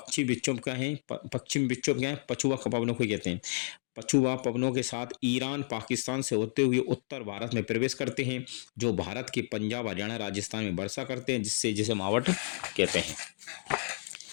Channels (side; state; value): right; silent; digital silence